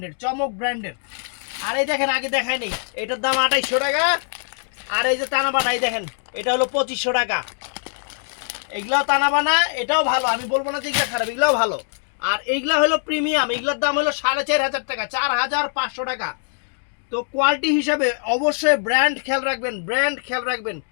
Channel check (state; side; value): silent; right; 64 dB below the other